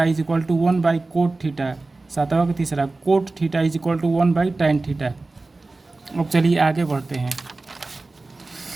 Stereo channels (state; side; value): quieter; left; 3.3 dB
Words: is equal to 1 by cot theta, सातवां का तीसरा। Cot theta is equal to 1 by tan theta. अब चलिए आगे बढ़ते हैं।